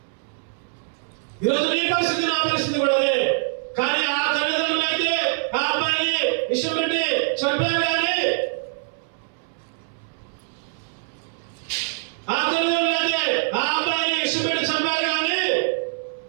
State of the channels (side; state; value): left; silent; 63 dB below the other